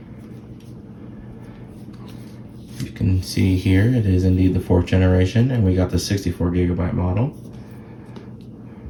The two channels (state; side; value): identical; both; correlation 1.00